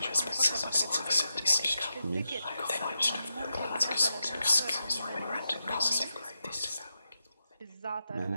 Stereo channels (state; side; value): inverted; both; correlation -0.87